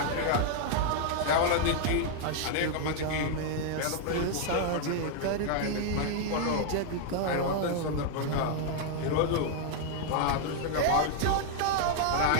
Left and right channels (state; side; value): different; both; correlation -0.01